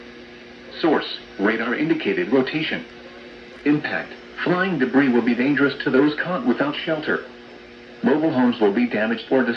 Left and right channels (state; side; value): identical; both; correlation 1.00